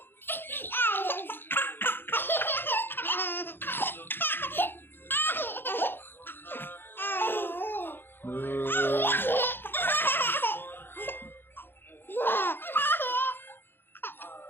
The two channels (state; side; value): late; right; 0.10 ms